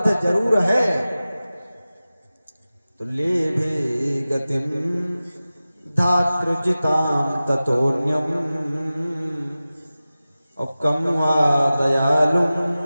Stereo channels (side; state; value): both; inverted; correlation -0.96